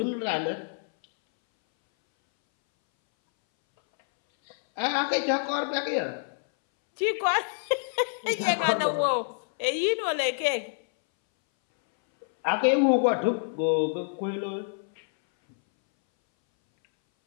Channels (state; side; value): silent; right; 60 dB below the other